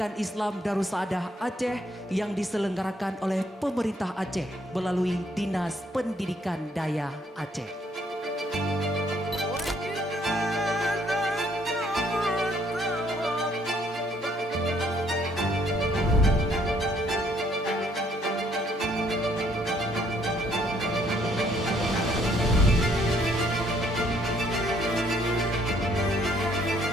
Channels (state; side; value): normal; both; correlation 0.67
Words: Islam Darussaadah Aceh yang diselenggarakan oleh pemerintah Aceh melalui Dinas Pendidikan Daya Aceh.